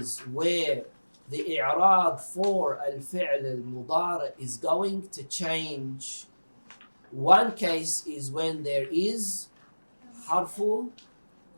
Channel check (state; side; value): inverted; both; correlation -1.00